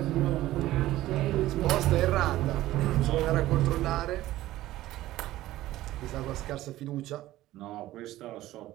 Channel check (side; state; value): left; quieter; 15.6 dB